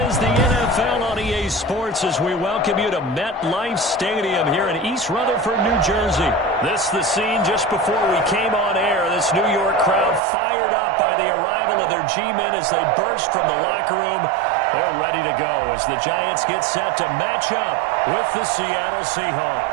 the NFL on EA Sports as we welcome you to MetLife Stadium here in East Rutherford, New Jersey. This the scene just before we came on air. This New York crowd fired up by the arrival of their G-men as they burst from the locker room. They're ready to go as the Giants get set to match up with the Seattle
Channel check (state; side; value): drops out; left; at 10.2 s